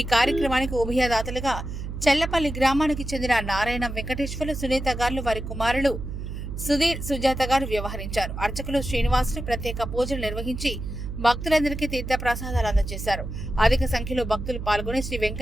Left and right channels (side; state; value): right; noise; hum, 7 dB below the sound